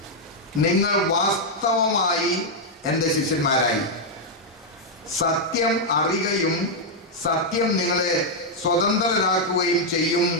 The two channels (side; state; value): both; normal; correlation -0.03